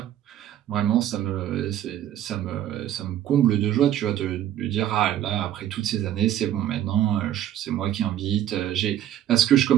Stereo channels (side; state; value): left; quieter; 11.6 dB